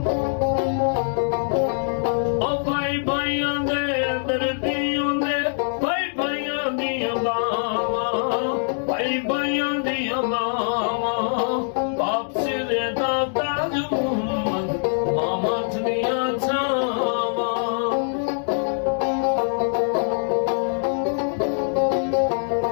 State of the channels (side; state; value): right; silent; digital silence